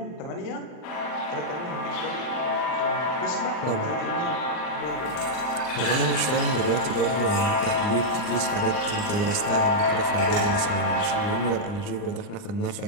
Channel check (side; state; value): right; late; 39 ms